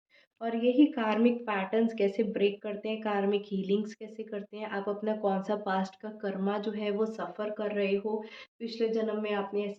और यही कार्मिक पैटर्न्स कैसे ब्रेक करते हैं, कार्मिक हीलिंग्स कैसे करते हैं, आप अपना कौन सा पास्ट का कर्मा जो है वो सफ़र कर रहे हो, पिछले जन्म में आपने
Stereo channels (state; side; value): identical; both; correlation 1.00